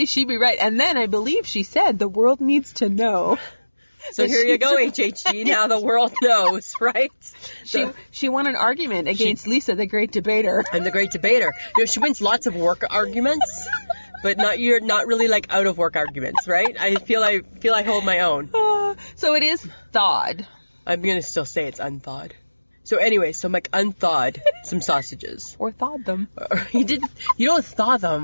she'd be right. And then I believe she said the world needs to know. So here you go, HHG. Now the world knows, right? She won an argument against Lisa, the great debater. I'm the great debater. She wins lots of work arguments, but you're not really like out of work arguments, right? I feel I hold my own. So it is thawed. I'm gonna still say it's unthawed. So anyway, Mike unthawed some sausages. Or thawed them. You don't thaw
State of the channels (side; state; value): both; inverted; correlation -1.00